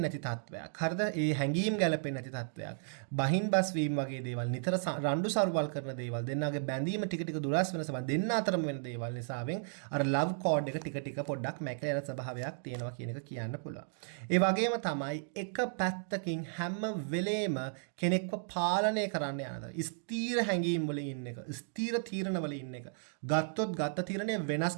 නැති තත්වයක්. හරිද? ඒ හැඟීම් ගැළපෙන්නේ නැති තත්වයක්. බහින් බස් වීම වගේ දේවල්, නිතර රණ්ඩු සරුවල් කරන දේවල්, දෙන්නාගේ බැඳීම ටික ටික දුරස් වෙන සබඳ දෙන්න අතරම වෙන දේවල් නිසාවෙන් අර ලව් කෝඩ් එක ටික ටික පොඩ්ඩක් මැකලා යන ස්වභාවයක් තියෙනවා කියන එක කියන්න පුළුවන්. ඒ වගේම තමයි එක පැත්තකින් හැම වෙලේම කෙනෙක්ව පාලනය කරන්න යනද ස්ථීර හැඟීම් වල ඉන්න එක, ස්ථීර තීරණ වල ඉන්න එක, ගත්තොත් ගත්ත තීරණය වෙනස්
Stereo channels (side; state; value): left; silent; digital silence